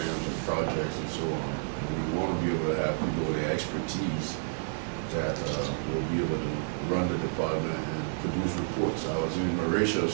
and projects and so on. And we want to be able to have people with the expertise that will be able to run the department and produce reports. I was in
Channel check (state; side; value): silent; left; digital silence